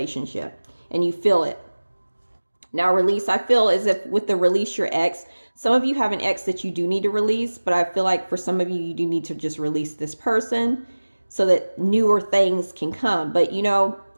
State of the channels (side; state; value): both; inverted; correlation -1.00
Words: and you feel it. Now release, I feel as if with the release your ex, some of you have an ex that you do need to release, but I feel like for some of you, you do need to just release this person so that newer things can come. But